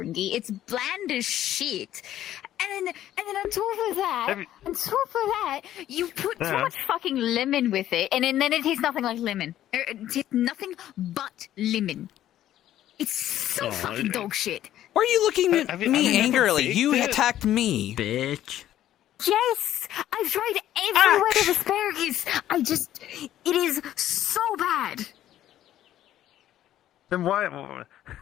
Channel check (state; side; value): quieter; right; 12.4 dB